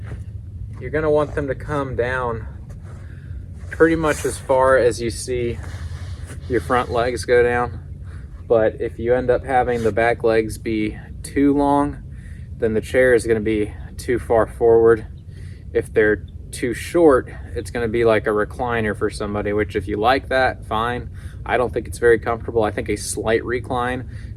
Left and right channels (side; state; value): both; identical; correlation 1.00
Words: you're going to want them to come down pretty much as far as you see your front legs go down. But if you end up having the back legs be too long, then the chair is going to be too far forward. If they're too short, it's going to be like a recliner for somebody, which if you like that, fine. I don't think it's very comfortable. I think a slight recline